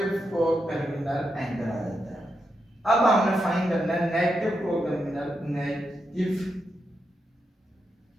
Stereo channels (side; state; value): both; normal; correlation 0.85